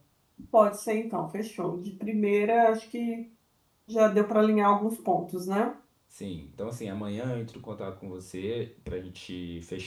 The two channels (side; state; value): both; identical; correlation 1.00